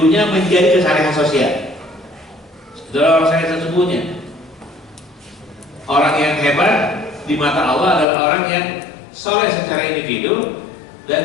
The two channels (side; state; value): right; drops out; at 8.1 s